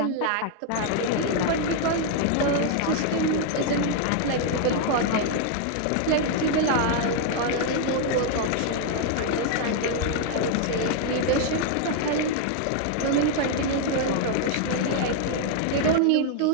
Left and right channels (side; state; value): both; different; correlation 0.00